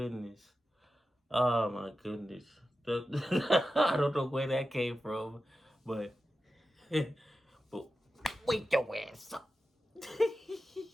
Oh my goodness. I don't know where that came from, but but wake your ass up.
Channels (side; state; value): both; normal; correlation 0.92